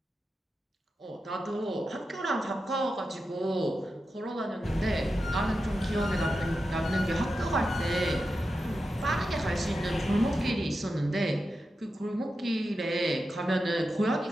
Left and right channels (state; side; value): normal; both; correlation 0.90